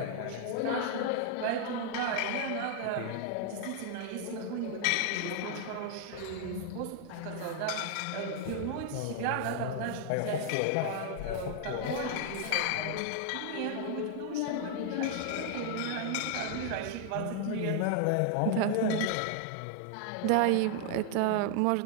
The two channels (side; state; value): both; different; correlation 0.00